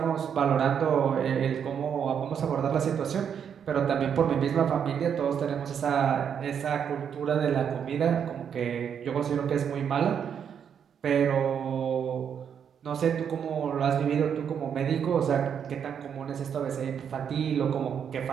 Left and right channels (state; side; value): quieter; left; 7.9 dB